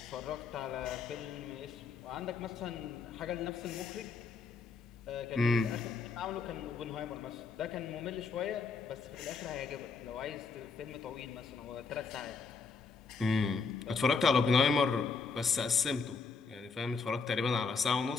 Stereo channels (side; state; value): right; quieter; 4.8 dB